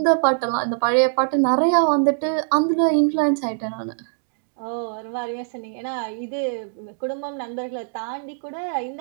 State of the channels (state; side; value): silent; left; digital silence